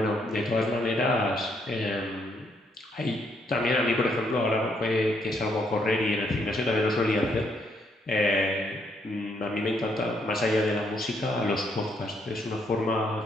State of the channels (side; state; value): both; normal; correlation 0.73